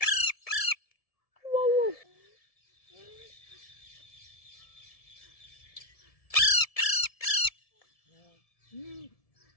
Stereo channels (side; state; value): right; late; 1.7 ms